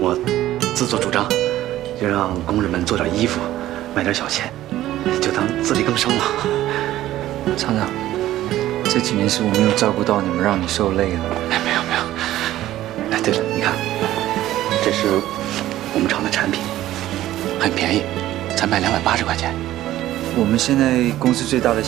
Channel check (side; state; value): left; quieter; 14.2 dB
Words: 自作主張，就讓工人們做點衣服，賣點小錢，就當自力更生嘛。廠長，這幾年是我沒有照顧到你們，讓你受累了。哎，沒有。哎，對了，你看，這是我們廠的產品，很便宜，才賣280塊錢。我們現在公司最大的